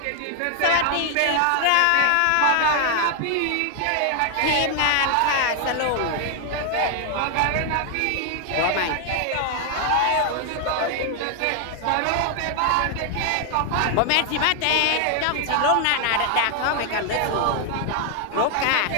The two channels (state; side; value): different; both; correlation 0.00